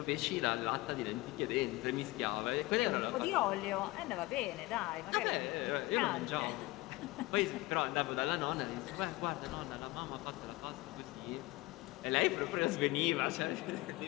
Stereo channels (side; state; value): right; quieter; 20.6 dB